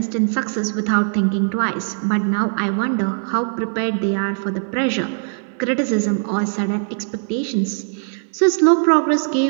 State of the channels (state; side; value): silent; left; 60 dB below the other